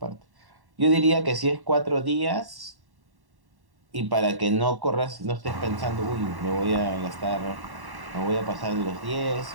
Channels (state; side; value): late; left; 1.1 ms